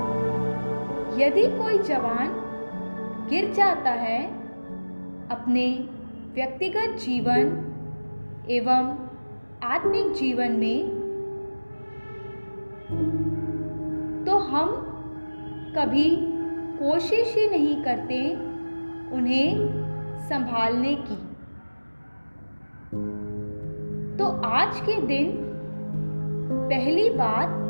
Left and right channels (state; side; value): inverted; both; correlation -1.00